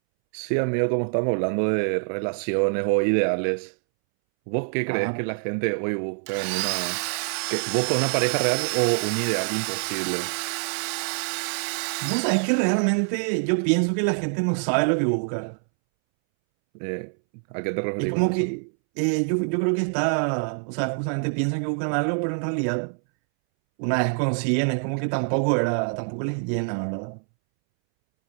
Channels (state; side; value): silent; left; 62 dB below the other